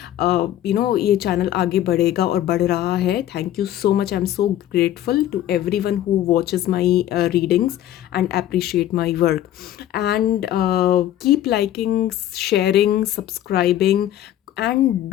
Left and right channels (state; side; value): quieter; right; 12.4 dB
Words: ये चैनल आगे बढ़ेगा और बढ़ रहा है। Thank you so much, I am so grateful to everyone who watches my readings and appreciate my work. And keep liking, sharing, subscribing and